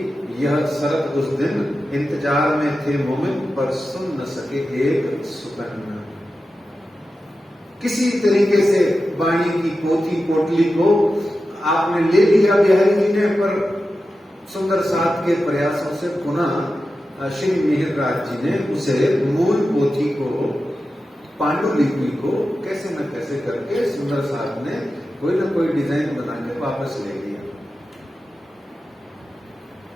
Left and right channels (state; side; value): normal; both; correlation 0.92